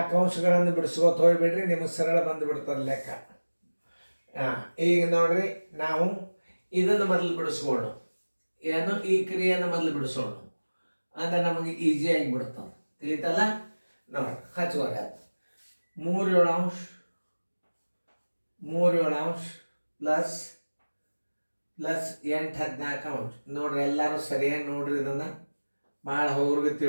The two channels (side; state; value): both; inverted; correlation -1.00